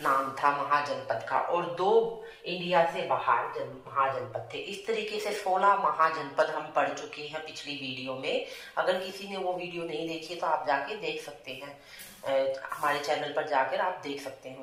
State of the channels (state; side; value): identical; both; correlation 1.00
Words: नाम था महाजनपद का, और 2 इंडिया से बाहर महाजनपद थे। इस तरीके से 16 महाजनपद हम पढ़ चुके हैं पिछली वीडियो में। अगर किसी ने वो वीडियो नहीं देखी तो आप जाके देख सकते हैं, हमारे चैनल पर जाकर आप देख सकते हैं